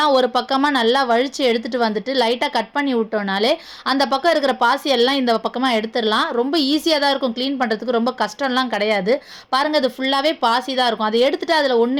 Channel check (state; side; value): identical; both; correlation 1.00